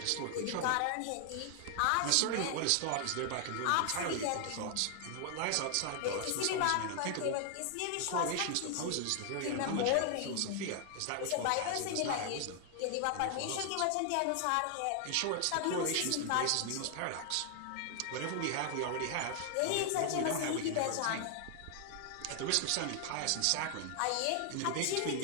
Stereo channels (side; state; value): both; different; correlation 0.00